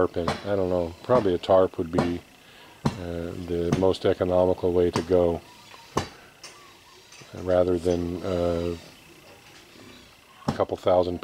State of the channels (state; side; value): identical; both; correlation 1.00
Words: in. I don't know. Probably a tarp would be the most economical way to go, rather than a couple thousand